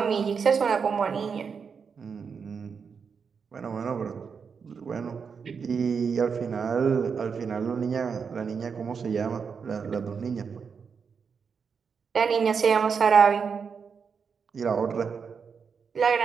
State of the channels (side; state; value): left; quieter; 6.0 dB